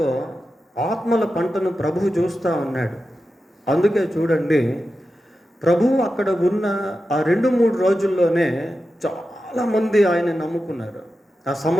ఆత్మల పంటను ప్రభువు చూస్తూ ఉన్నాడు. అందుకే చూడండి, ప్రభువు అక్కడ ఉన్న ఆ 2-3 రోజుల్లోనే చాలామంది ఆయన నమ్ముకున్నారు. ఆ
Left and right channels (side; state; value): both; normal; correlation 0.91